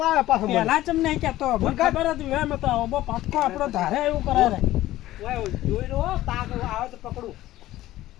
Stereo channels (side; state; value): right; quieter; 15.4 dB